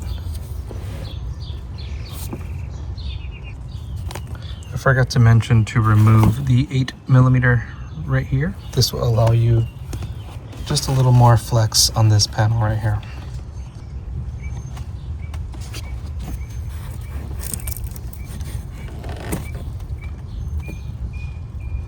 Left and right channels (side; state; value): both; identical; correlation 1.00